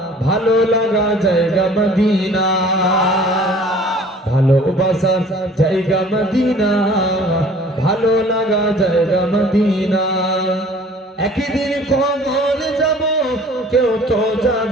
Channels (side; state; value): both; normal; correlation 0.50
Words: ভালো লাগা জায়গা মদিনা। ভালোবাসার জায়গা মদিনা, ভালো লাগা জায়গা মদিনা। একদিন কবর যাব কেউ তো